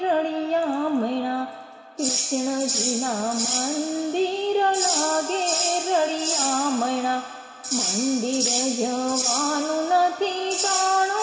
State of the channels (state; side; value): identical; both; correlation 1.00